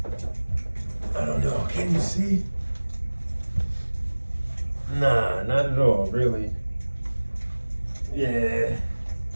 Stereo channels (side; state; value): both; inverted; correlation -1.00